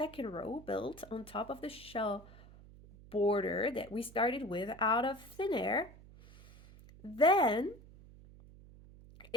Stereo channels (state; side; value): noise; right; hum, 20 dB below the sound